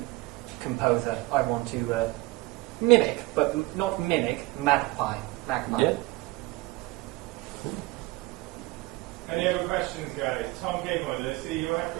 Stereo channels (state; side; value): quieter; left; 21.2 dB